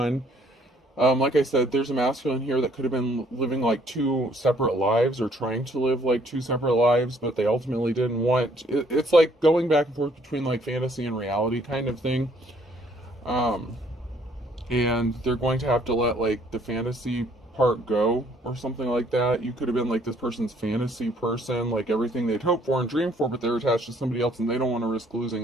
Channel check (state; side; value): normal; both; correlation 0.63